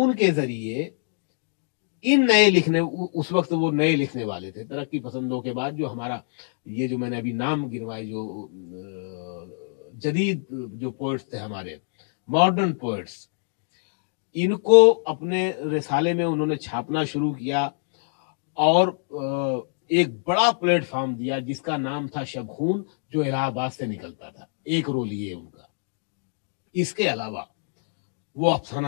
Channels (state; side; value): silent; right; digital silence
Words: کے ذریعے ان نئے لکھنے، اس وقت وہ نئے لکھنے والے تھے ترقی پسندوں کے بعد، جو ہمارا یہ جو میں نے ابھی نام گنوائے، جو جدید جو پوئٹس تھے ہمارے، ماڈرن پوئٹس، ان کو اپنے رسالے میں انہوں نے چھاپنا شروع کیا، اور ایک بڑا پلیٹ فارم دیا جس کا نام تھا شبخون، جو الہ آباد سے نکلتا تھا. ایک رول یہ ان کا. اس کے علاوہ وہ افسانہ